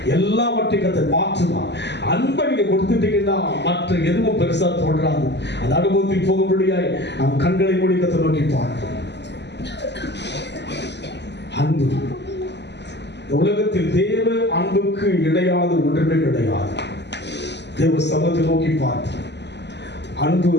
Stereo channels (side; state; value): right; late; 0.50 ms